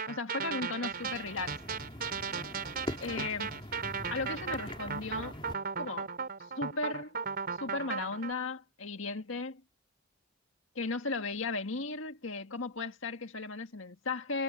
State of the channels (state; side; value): normal; both; correlation -0.11